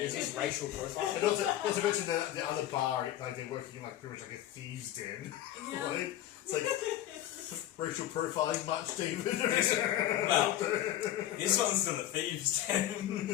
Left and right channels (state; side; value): quieter; right; 12.8 dB